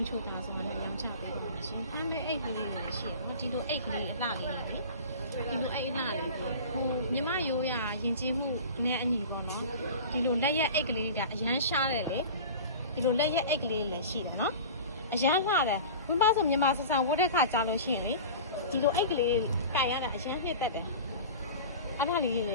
းချူတာဆိုတော့ညချပေးပါမယ်ရှင်ဟမ်းမဲအိတ်ကလေးလည်းရှိတယ်နော်ဒီလိုအိတ်ကလေးအလှလေးလေဒီလိုအိတ်အလှလေးကိုမြမရိုးရရင်ကျေးမှုနဲ့အညီပေါ့နော်ဒီလိုလက်ရက်အိတ်ကလေးတွေကအရန်ရှားတယ်လေဒီလိုလက်ရက်အိတ်ကလေးလည်းရှိတယ်နော်အရန်လှတယ်ဘုံပါဆိုမြမဆဆန်ဝတ်တဲ့ခါကြားလို့ရှိရင်လေဒီလိုအိတ်ကလေးကိုင်ရတာအရန်နှစ်သက်တယ်အဲ့ဒါလေးလည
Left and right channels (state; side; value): inverted; both; correlation -0.36